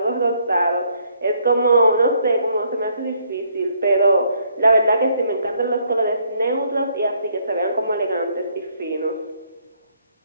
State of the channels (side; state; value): both; inverted; correlation -0.69